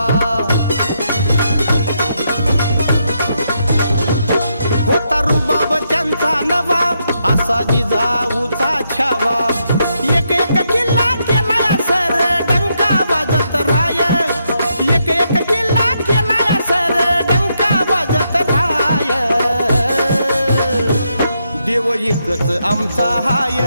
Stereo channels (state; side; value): inverted; both; correlation -0.79